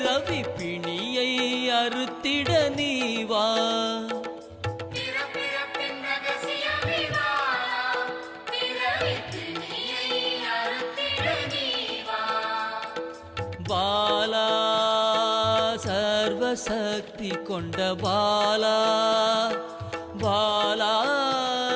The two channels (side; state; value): both; identical; correlation 1.00